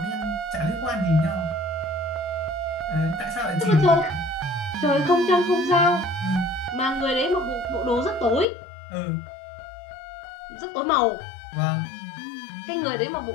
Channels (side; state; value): right; drops out; at 8.5 s